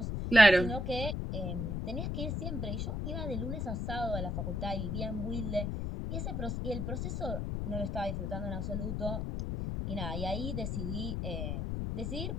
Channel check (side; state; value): left; noise; rumble, 1 dB below the sound